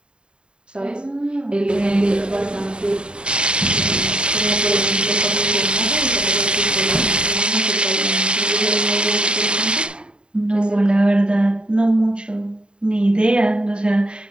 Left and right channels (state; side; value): late; left; 0.051 ms